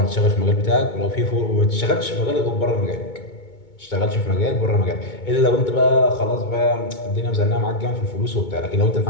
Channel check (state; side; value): late; right; 2.2 ms